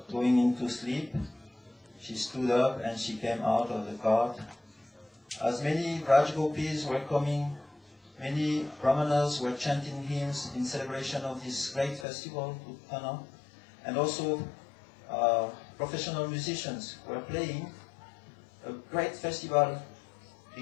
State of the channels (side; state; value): right; drops out; at 12.1 s